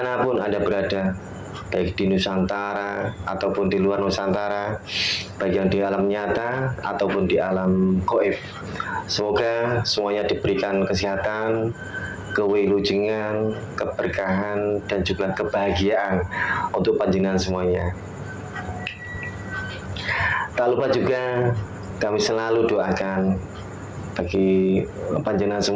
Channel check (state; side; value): identical; both; correlation 1.00